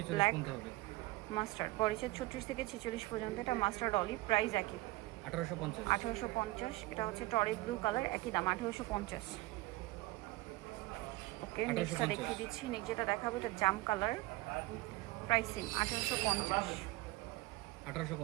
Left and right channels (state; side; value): quieter; left; 19.8 dB